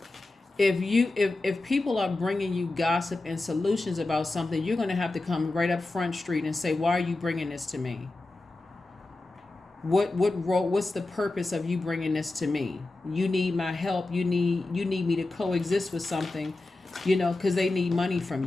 if people are bringing you gossip and solutions about something, you're going to have to come right up Front Street and say, why are you bringing this to me? What's the purpose of you bringing this to me? You need my help. You need me to coexist with something, because they need money from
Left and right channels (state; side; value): quieter; right; 3.0 dB